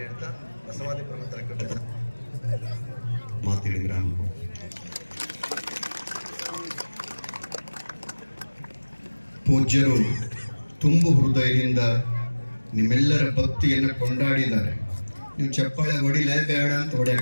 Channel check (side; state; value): both; inverted; correlation -1.00